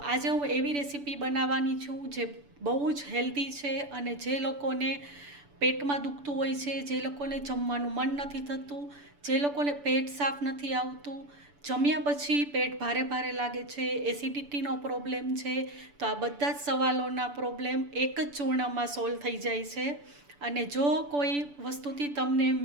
આજે હું એવી રેસીપી બનાવવાની છું જે બહુ જ હેલ્ધી છે અને જે લોકોને પેટમાં દુખતું હોય છે, જે લોકોને જમવાનું મન નથી થતું, જે લોકોને પેટ સાફ નથી આવતું, જમ્યા પછી પેટ ભારે ભારે લાગે છે, એસિડિટીનો પ્રોબ્લેમ છે, તો આ બધા જ સવાલોના પ્રોબ્લેમ એક જ ચૂર્ણમાં સોલ્વ થઈ જાય છે. અને જો કોઈ વસ્તુથી તમને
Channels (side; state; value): left; late; 6.9 ms